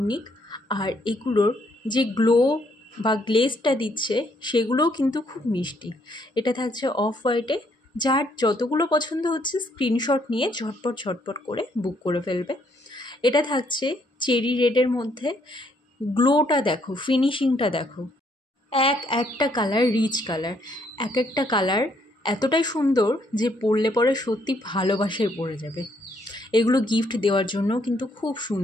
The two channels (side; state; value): both; normal; correlation 0.70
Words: আর এগুলোর যে গ্লো বা গ্লেজটা দিচ্ছে সেগুলোও কিন্তু খুব মিষ্টি। এটা থাকছে অফ হোয়াইটে, যার যতগুলো পছন্দ হচ্ছে স্ক্রিনশট নিয়ে ঝটপট করে বুক করে ফেলবে। এটা থাকছে চেরি রেডের মধ্যে, গ্লোটা দেখো, ফিনিশিংটা দেখো, একটা কালার রিচ কালার, একটা কালার এতটাই সুন্দর যে পরলে পরে সত্যি ভালোবাসায় পড়ে যাবে। এগুলো গিফট দেওয়ার জন্য কিন্তু খুব